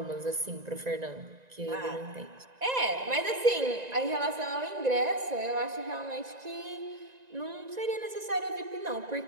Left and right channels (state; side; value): late; left; 1.9 ms